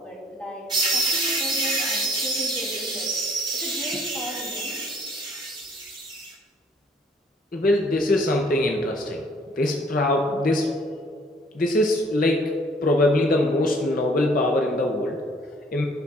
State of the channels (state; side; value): normal; both; correlation 0.59